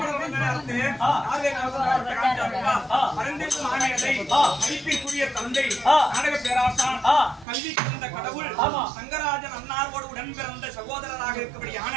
நேரத்து ஆவே காமிச்சாருப்பா அரந்தேசு மாமேதை மதிப்பிற்குரிய தந்தை நாடக பேராசான் கல்வி கலந்த கடவுள் சங்கராஜன் அன்னாரோடு உடன் பிறந்த சகோதரராக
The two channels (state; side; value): drops out; left; at 7.5 s